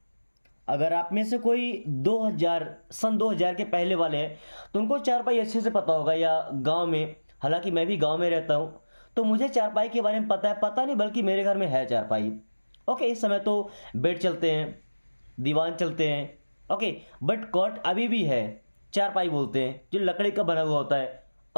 अगर आप में से कोई 2000 के पहले वाले हैं तो उनको चारपाई अच्छे से पता होगा, या गांव में, हालांकि मैं भी गांव में रहता हूं तो मुझे चारपाई के बारे में पता है, पता नहीं बल्कि मेरे घर में है चारपाई। ओके, इस समय तो बेड चलते हैं, दीवान चलते हैं। ओके, बट कॉट अभी भी है, चारपाई बोलते हैं, जो लकड़ी का बना हुआ होता है।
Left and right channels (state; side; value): inverted; both; correlation -1.00